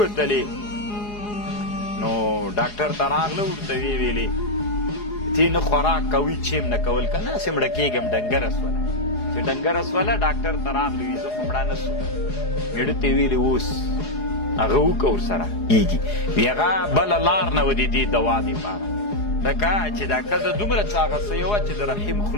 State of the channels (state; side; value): late; right; 4.8 ms